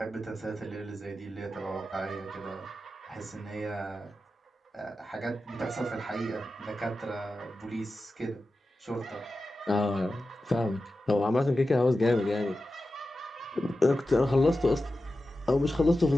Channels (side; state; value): both; normal; correlation 0.92